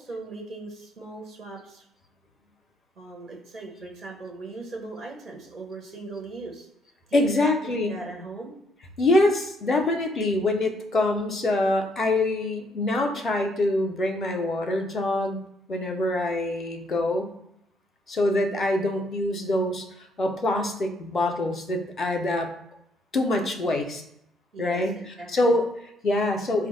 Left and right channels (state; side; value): normal; both; correlation 0.70